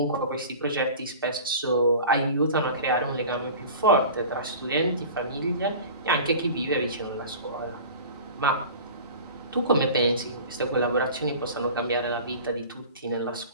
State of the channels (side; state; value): both; inverted; correlation -0.38